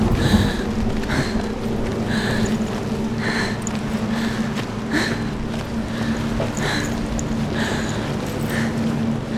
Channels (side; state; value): both; identical; correlation 1.00